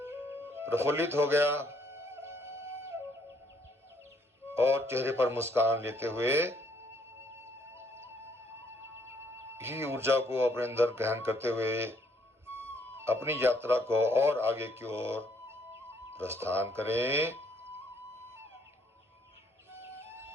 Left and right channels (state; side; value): normal; both; correlation 0.67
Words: प्रफुल्लित हो गया और चेहरे पर मुस्कान लेते हुए इसी ऊर्जा को अपने अंदर ग्रहण करते हुए अपनी यात्रा को और आगे की ओर प्रस्थान करें।